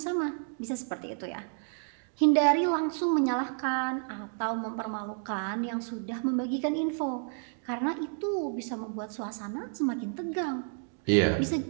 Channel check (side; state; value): left; silent; 57 dB below the other